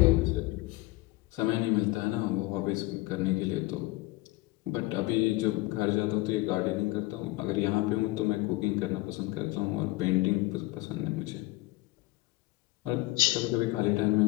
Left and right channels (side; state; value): right; quieter; 20.4 dB